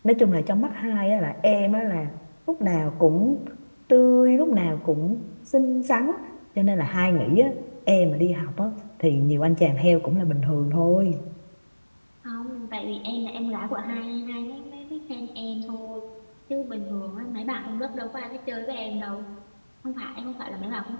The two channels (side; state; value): both; inverted; correlation -1.00